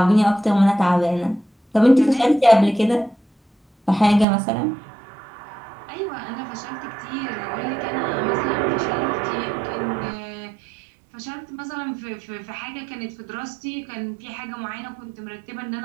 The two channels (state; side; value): drops out; left; at 4.2 s